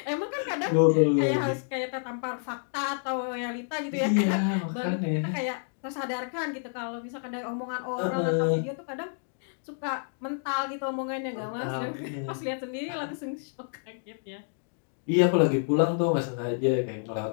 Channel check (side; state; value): right; silent; 59 dB below the other